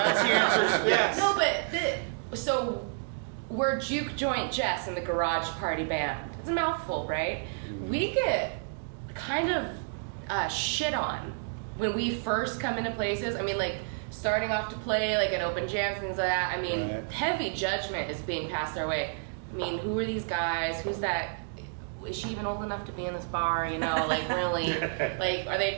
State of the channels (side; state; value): left; silent; digital silence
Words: the answer. Yes. No, but so we're Juke Joint Jess in the Garage Party Band. It's a mouthful, right? We get kind of shit on when we first come into places. I mean, like starting off to play like an open jam, things like that. I mean, Right. heavy judgment is being passed our way. I mean, who are these guys? Who's that? Is she even old enough to be in this bar? You know, like really, like are